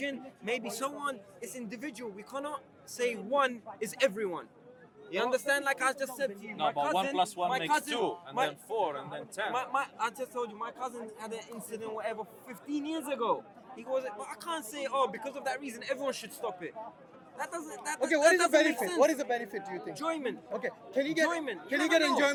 Maybe so on. It's individual. We cannot say one is everyone. You understand? Like I just said to you, No, my but cousin, 1 plus 1 my makes cousin, 2, and my- then 4, and then 10. I just told you, my cousin had an incident, whatever, 15 years ago. He goes, but I can't say, because of that reason, everyone should stop it. That doesn't. That, Okay, that what is the doesn't make benefit? sense. What is the benefit? Do you think? Enjoyment? Okay, can you get Enjoyment. Can You you get never know.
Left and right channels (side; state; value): both; identical; correlation 1.00